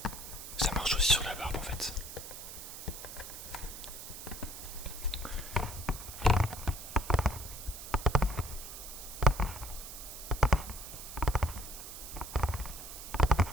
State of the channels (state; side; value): noise; right; hiss, 11 dB below the sound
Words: aussi sur la barbe en fait.